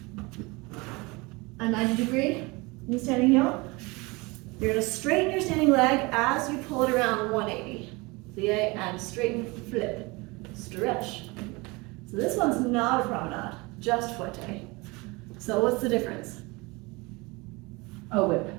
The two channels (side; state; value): left; quieter; 25.2 dB